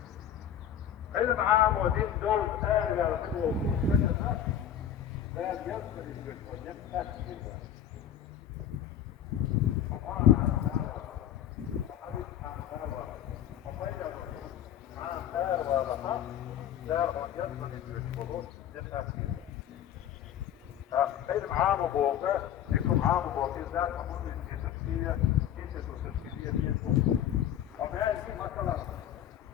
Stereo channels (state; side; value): quieter; right; 10.1 dB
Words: علم عام ودين دول آية لا يصل ويبقى علم عام وبوقع لكم عام وبوقع ذات أمر في تفسير كيسة وتفسيرية وما يجي مثلا